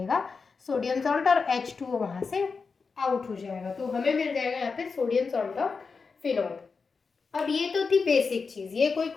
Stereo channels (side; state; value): right; quieter; 4.9 dB